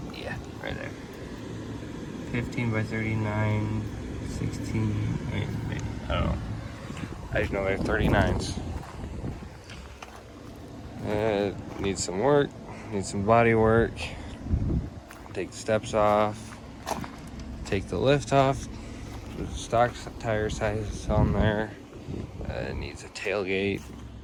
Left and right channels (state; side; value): identical; both; correlation 1.00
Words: right there. 15 by 39, 16, maybe, I don't know. I just know they're 39s. Needs some work, needs some body work. Take the steps off, take the lift off. The stock tire size is on there. It needs a tailgate.